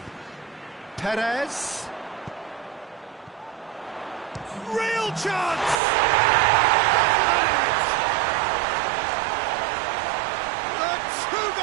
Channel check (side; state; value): left; drops out; at 5.8 s